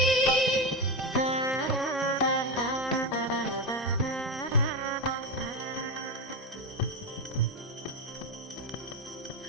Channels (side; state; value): both; normal; correlation 0.13